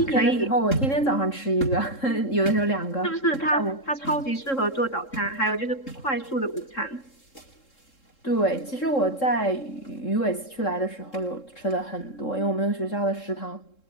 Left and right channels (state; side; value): late; right; 3.7 ms